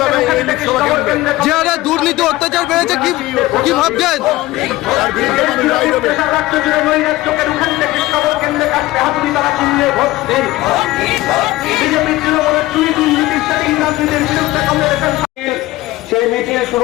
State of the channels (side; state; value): right; quieter; 17.7 dB